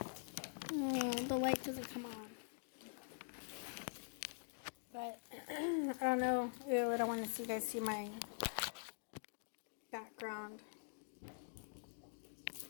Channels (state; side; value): silent; right; digital silence